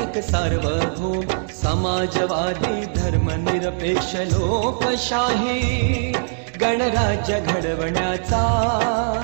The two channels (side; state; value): left; silent; digital silence